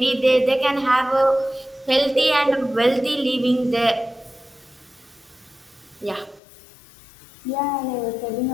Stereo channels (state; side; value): drops out; right; at 6.4 s